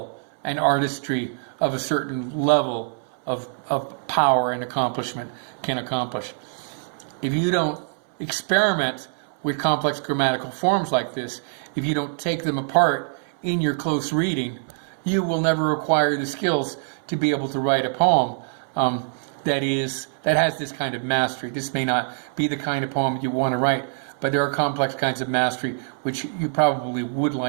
and artistry of a certain level of power and accomplishment can accomplish. If you don't experiment with complex grammatical forms like this, if you don't take them apart in your close reading, you will never acquire the skills to be able to write a poem that has this kind of mastery. This may not be the kind of poem you want to write, but there are complex kinds of mastery which you probably would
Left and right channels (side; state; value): left; silent; 62 dB below the other